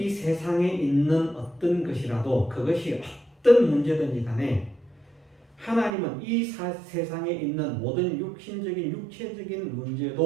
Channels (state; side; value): drops out; left; at 5.9 s